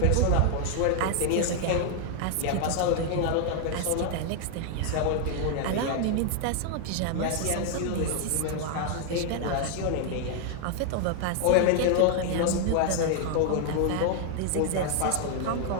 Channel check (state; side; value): different; both; correlation 0.00